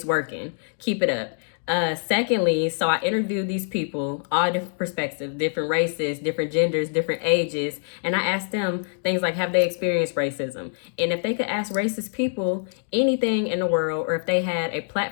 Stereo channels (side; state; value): right; silent; digital silence